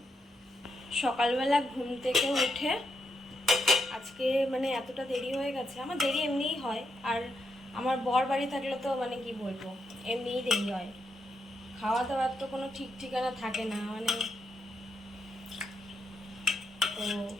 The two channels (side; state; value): both; normal; correlation 0.82